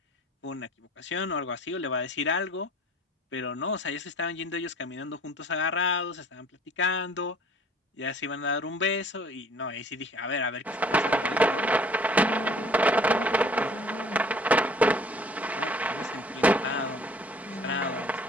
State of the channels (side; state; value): both; normal; correlation 0.52